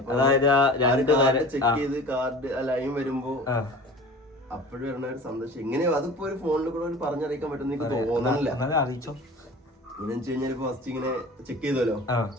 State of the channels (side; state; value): both; normal; correlation 0.40